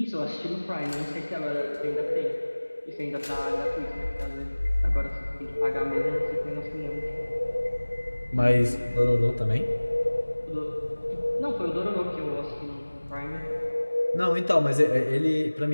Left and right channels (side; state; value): both; inverted; correlation -1.00